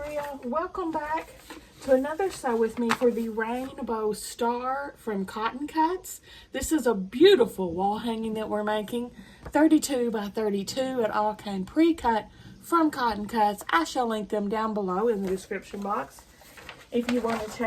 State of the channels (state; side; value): identical; both; correlation 1.00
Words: Welcome back to another sew with me for the Rainbow Star from Cotton Cuts. This is a beautiful wall hanging that we're making, 32 by 32. It all came pre-cut from Cotton Cuts. I shall link them down below in the description box if you want to